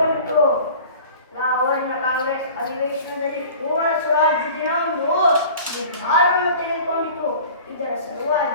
ಲಾಹೋರಿನ ಕಾಂಗ್ರೆಸ್ ಅಧಿವೇಶನದಲ್ಲಿ ಪೂರ್ಣ ಸ್ವರಾಜ್ಯ ದಿನವೊಂದು ನಿರ್ಧಾರವನ್ನು ತೆಗೆದುಕೊಂಡಿತು. ಇದರ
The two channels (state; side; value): inverted; both; correlation -0.43